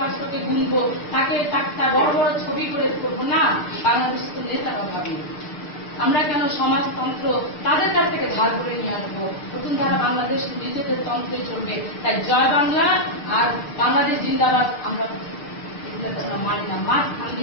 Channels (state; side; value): late; right; 6.6 ms